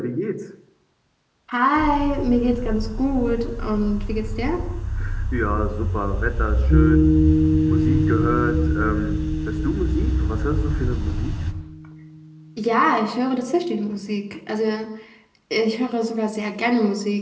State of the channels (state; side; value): identical; both; correlation 1.00